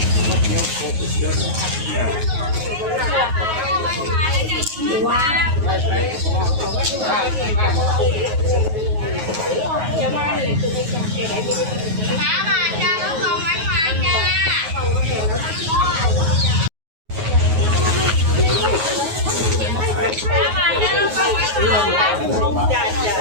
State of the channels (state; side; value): late; left; 9.4 ms